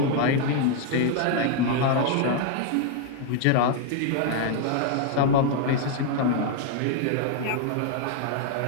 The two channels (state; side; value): different; both; correlation 0.00